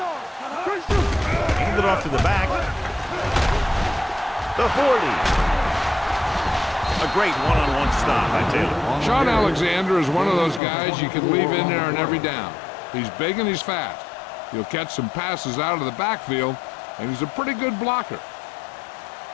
Hand it off to the back. The 40. A great one-on-one stop by Taylor. Sean Alexander is one of those guys you can leave in there on every down. He's big and he's fast. He'll catch some passes out of the backfield, and he's a pretty good blocker.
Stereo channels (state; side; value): drops out; right; at 10.6 s